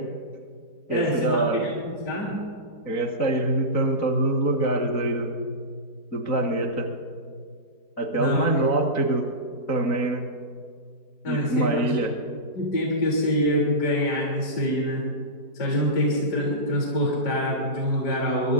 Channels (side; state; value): right; late; 4.6 ms